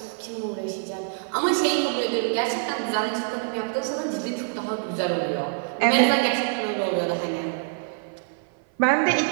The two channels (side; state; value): left; silent; 57 dB below the other